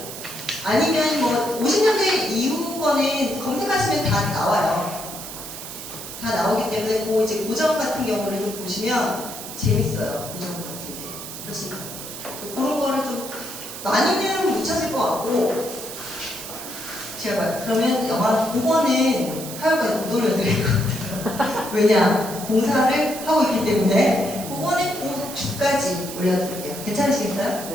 아니면 뭐 50년대 이후 거는 검색하시면 다 나와요. 다 나오기 때문에 그 이제 고전 같은 경우를 좀 보시면 재밌어요. 고전 같은 게 훨씬 그런 거를 좀 많이는 못 찾을 것 같고, 제가 그러면 영화 5번은 화요일까지 못 올려드릴 것 같아요. 왜냐, 봉사를 하고 있기 때문에 5번은 그 주까지 올려드릴게요. 괜찮으시겠어요?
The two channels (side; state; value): right; noise; hiss, 10 dB below the sound